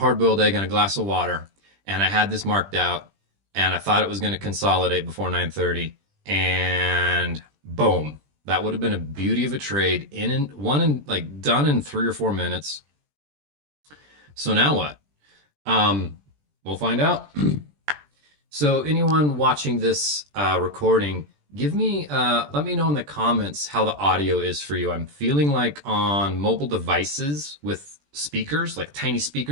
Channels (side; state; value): left; late; 20 ms